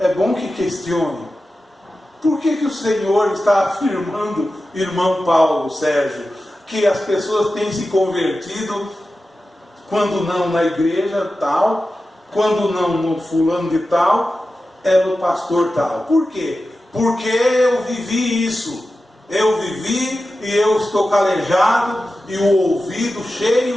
bom que questione. Por que o Senhor está afirmando, irmão Paulo, Sérgio, que as pessoas têm se convertido, quando não na igreja tal, quando não no fulano de tal, é no pastor tal? Por quê? Porque eu vivi isso. Eu vivi e eu estou calejado e o ouvido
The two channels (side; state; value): both; normal; correlation 0.93